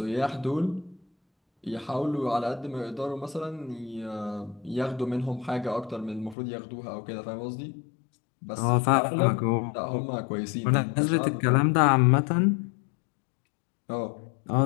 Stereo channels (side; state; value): right; drops out; at 6.4 s